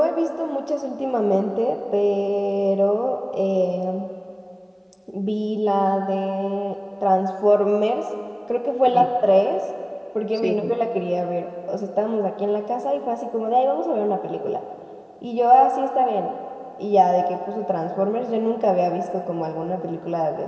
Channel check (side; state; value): both; identical; correlation 1.00